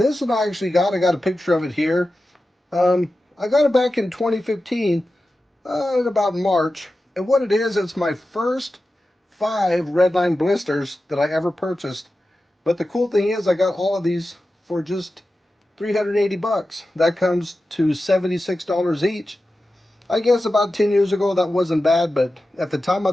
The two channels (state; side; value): normal; both; correlation 0.93